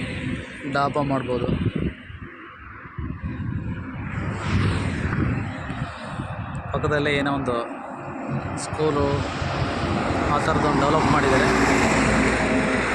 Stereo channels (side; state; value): both; identical; correlation 1.00